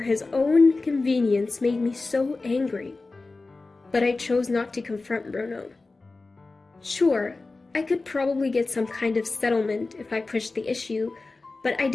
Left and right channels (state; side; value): quieter; right; 3.5 dB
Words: own convenience made me so angry. But I chose not to confront Bruno. Sure, I could probably get some kind of settlement if I pushed the issue, but I